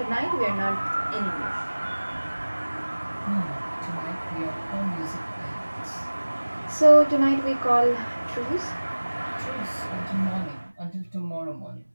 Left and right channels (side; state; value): both; inverted; correlation -1.00